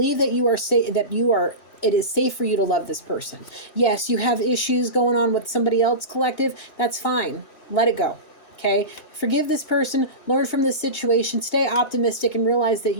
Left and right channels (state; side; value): late; right; 2.8 ms